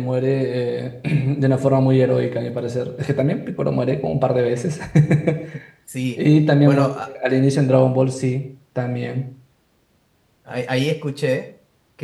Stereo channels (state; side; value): identical; both; correlation 1.00